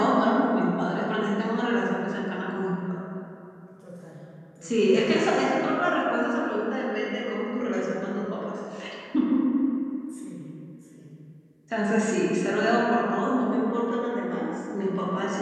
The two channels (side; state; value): both; identical; correlation 1.00